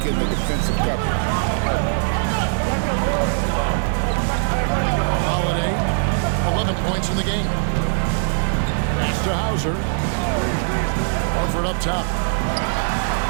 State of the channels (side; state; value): left; silent; 59 dB below the other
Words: in the defensive coverage. Holiday, 11 points in the game. Pass to Hauser. Horford up top.